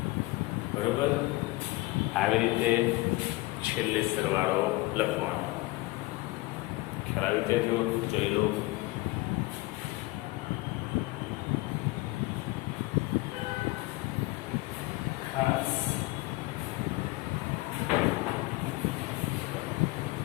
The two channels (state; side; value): quieter; right; 20.9 dB